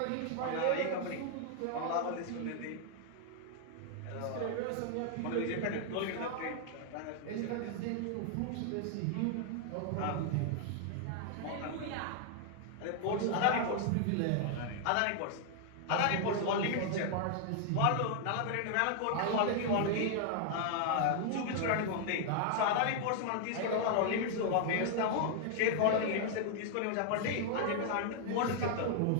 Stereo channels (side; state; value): both; different; correlation 0.00